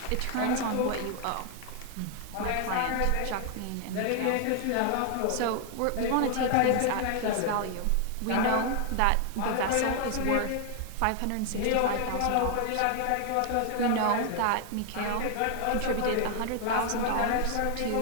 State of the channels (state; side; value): different; both; correlation 0.00